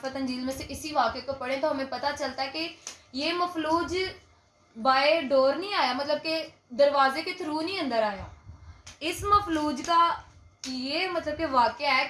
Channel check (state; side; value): identical; both; correlation 1.00